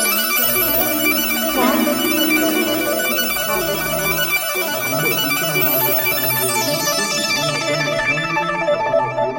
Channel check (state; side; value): identical; both; correlation 1.00